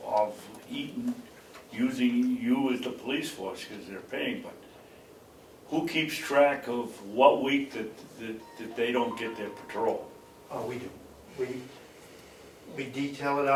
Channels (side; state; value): both; identical; correlation 1.00